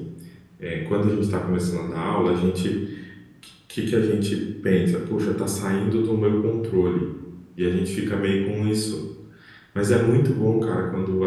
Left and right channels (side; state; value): both; identical; correlation 1.00